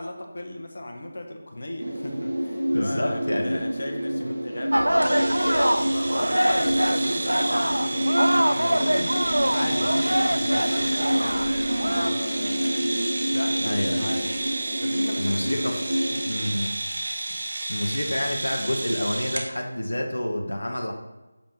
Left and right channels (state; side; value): inverted; both; correlation -0.98